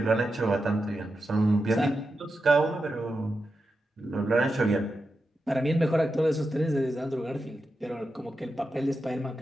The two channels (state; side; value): normal; both; correlation 0.89